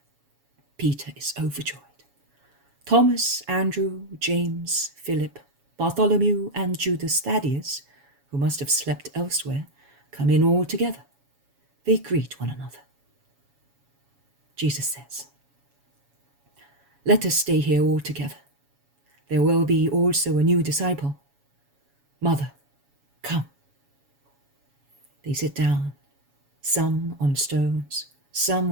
Peter is overjoyed. Thomas, Andrew, James, Philip, Bartholomew, and Judas Thaddeus, who must have slept elsewhere, come in all together. They greet one another. Jesus says, "Let us stay here all together. There will be also a new disciple. Mother, come." They sit down, some on stones,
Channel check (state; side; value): late; left; 7.2 ms